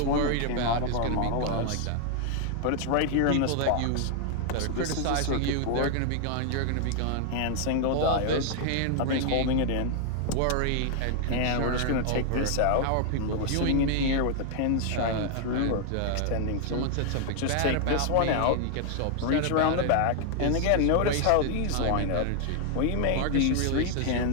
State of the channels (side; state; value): both; different; correlation 0.00